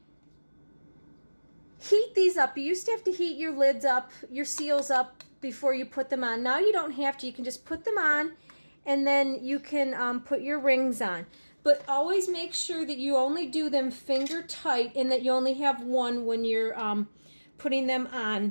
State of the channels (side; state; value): both; inverted; correlation -1.00